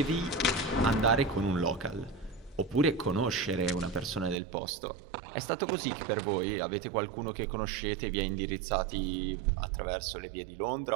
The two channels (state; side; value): drops out; left; at 4.4 s